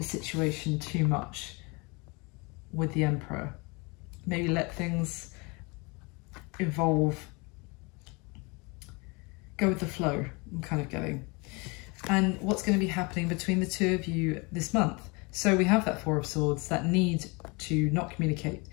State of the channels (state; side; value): quieter; right; 28.6 dB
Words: situation too much with the Emperor. Maybe let things evolve. Go with the flow, I'm kind of getting. And what's going to be happening between the two of you this month. So we have that Four of Swords, that need to not communicate.